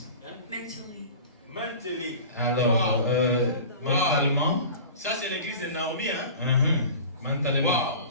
Mentally. Mentally. Alors, mentalement, Ça, c'est l'église de Naomi, hein? mentalement.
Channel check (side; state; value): both; inverted; correlation -0.38